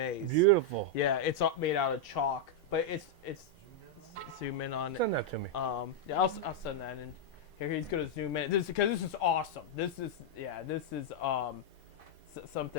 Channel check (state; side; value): normal; both; correlation -0.03